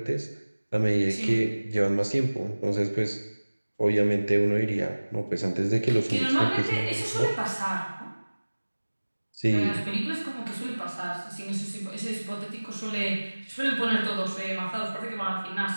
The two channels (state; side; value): inverted; both; correlation -1.00